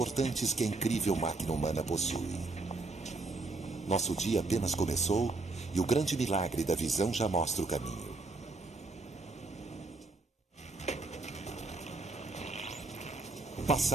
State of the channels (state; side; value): quieter; left; 3.5 dB